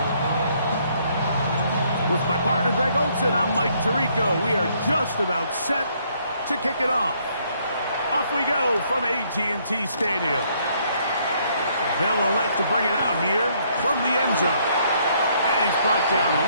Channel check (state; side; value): inverted; both; correlation -0.68